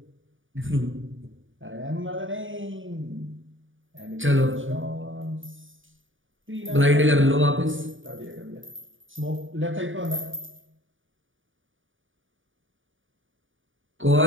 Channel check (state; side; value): late; left; 0.57 ms